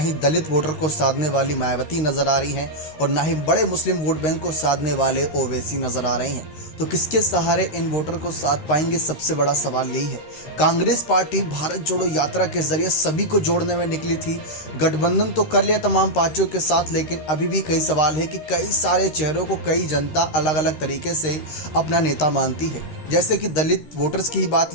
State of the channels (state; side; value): late; right; 13 ms